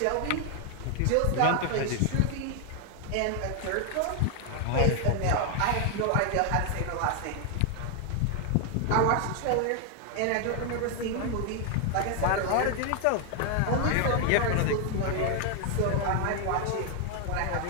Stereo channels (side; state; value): both; different; correlation 0.00